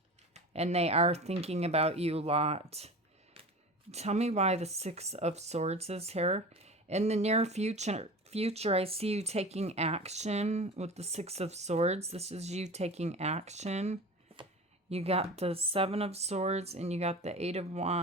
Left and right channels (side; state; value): both; normal; correlation 0.34